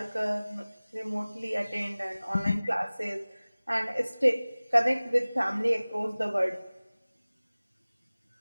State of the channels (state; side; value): inverted; both; correlation -0.99